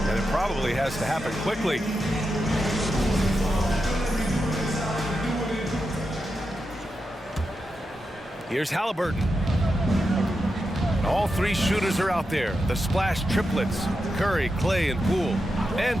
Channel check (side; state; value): both; normal; correlation 0.88